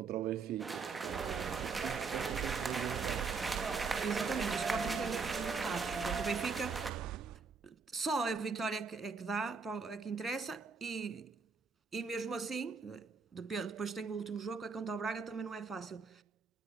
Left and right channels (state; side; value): quieter; left; 4.9 dB